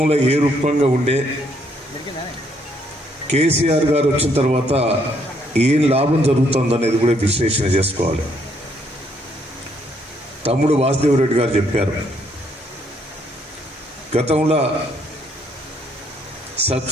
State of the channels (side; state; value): both; normal; correlation 0.70